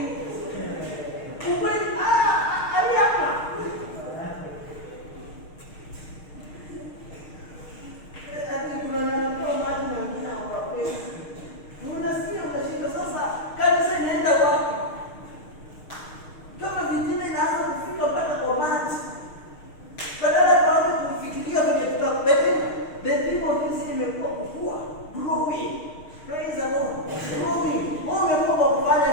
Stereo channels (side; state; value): right; late; 6.5 ms